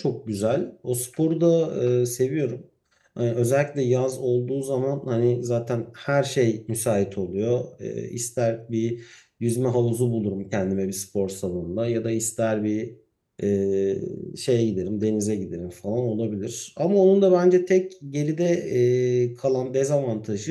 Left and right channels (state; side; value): identical; both; correlation 1.00